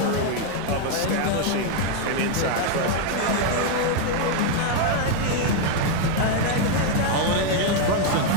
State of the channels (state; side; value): different; both; correlation 0.01